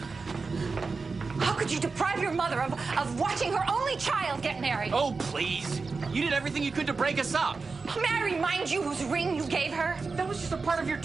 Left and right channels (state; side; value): quieter; left; 4.3 dB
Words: How could you deprive your mother of watching her only child get married? Oh, please. You did everything you could to break us up. May I remind you whose ring you gave her? That was just a part of your